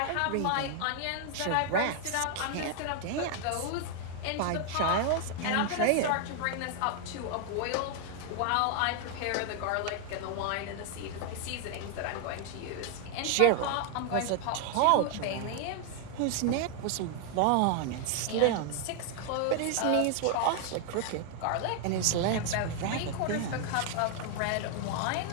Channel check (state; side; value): different; both; correlation 0.00